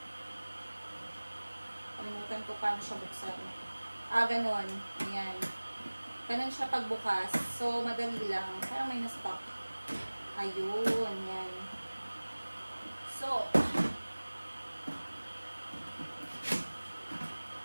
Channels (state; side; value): inverted; both; correlation -1.00